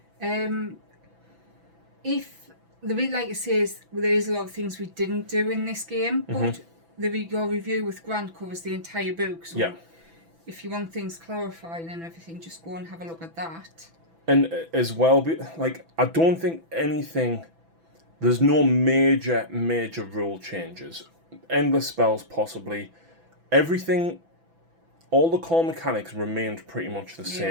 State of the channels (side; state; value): left; late; 6.0 ms